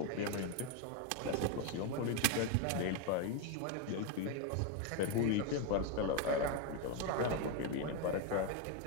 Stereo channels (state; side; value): different; both; correlation 0.02